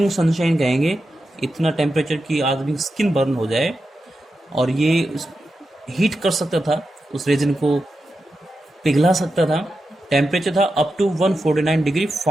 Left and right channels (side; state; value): both; normal; correlation 0.89